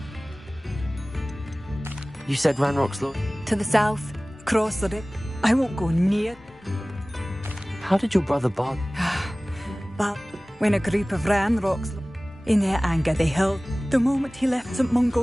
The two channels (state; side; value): normal; both; correlation 0.98